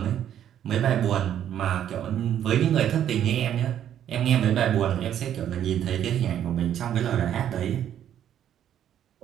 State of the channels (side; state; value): left; quieter; 10.3 dB